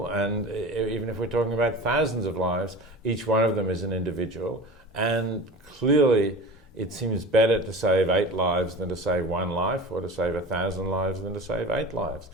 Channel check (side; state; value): both; normal; correlation 0.35